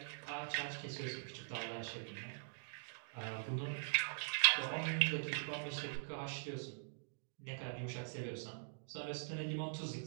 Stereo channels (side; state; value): left; silent; digital silence